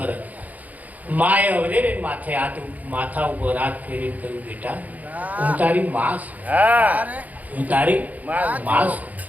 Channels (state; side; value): late; left; 0.078 ms